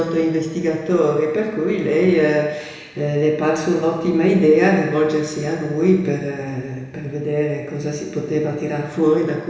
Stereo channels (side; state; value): both; identical; correlation 1.00